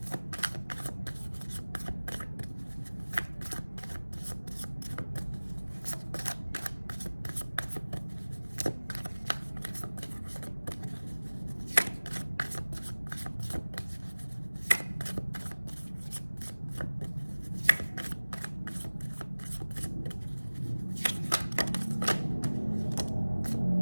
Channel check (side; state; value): both; inverted; correlation -1.00